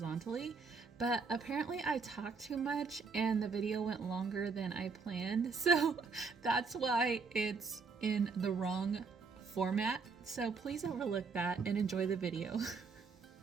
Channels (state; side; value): quieter; left; 4.8 dB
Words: But apparently I talked too much and the video went longer than I planned. So that's why it's in the wrong format. So please overlook that and enjoy the video.